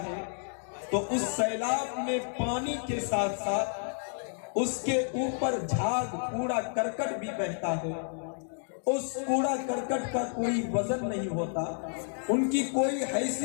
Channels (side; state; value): right; silent; 57 dB below the other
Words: ہے تو اس سیلاب میں پانی کے ساتھ ساتھ اس کے اوپر جھاگ کوڑا کرکٹ بھی بہتا ہے. اس کوڑا کرکٹ کا کوئی وزن نہیں ہوتا, ان کی کوئی